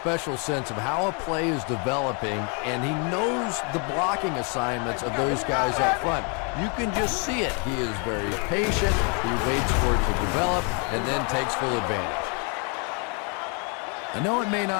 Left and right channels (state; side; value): quieter; right; 36.2 dB